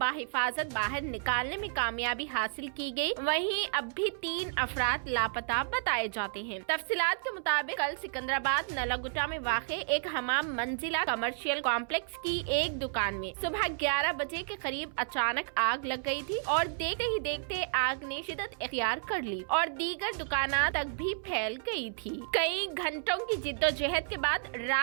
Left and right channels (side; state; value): left; silent; 57 dB below the other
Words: बाहर निकालने में कामयाबी हासिल की गई, वहीं अब भी 3 अफराद लापता बताए जाते हैं। तफसीलात के मुताबिक कल सिकंदराबाद नलागुट्टा में वाक़े एक हमाम मंजिला कमर्शियल कॉम्प्लेक्स की एक दुकान में सुबह 11 बजे के करीब अचानक आग लग गई थी और देखते ही देखते आग ने शिद्दत इख्तियार कर ली और दीगर दुकाना तक भी फैल गई थी। कई घंटों की जिद्दोजहद के बाद